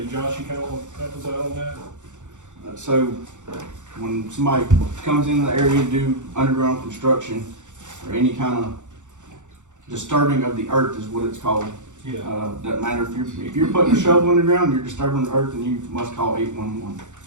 Josh, you kinda want to help us out on that? So, when somebody comes in the area to do underground construction, or any kind of disturbing of the earth is what it's called. Yeah. Doesn't matter if you're putting a shovel in the ground, you're disturbing the earth, then you must call 811.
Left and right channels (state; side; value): late; left; 0.85 ms